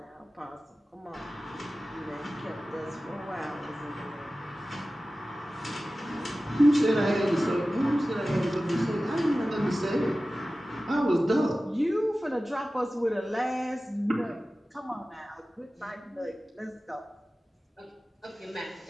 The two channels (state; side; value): normal; both; correlation 0.96